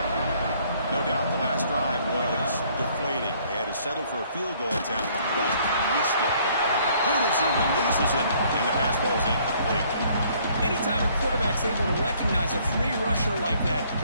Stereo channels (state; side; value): inverted; both; correlation -0.62